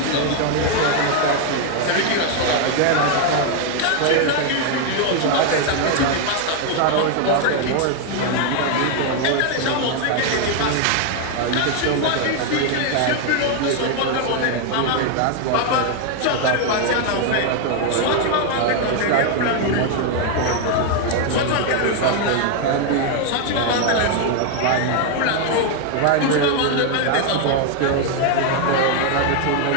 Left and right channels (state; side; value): different; both; correlation 0.01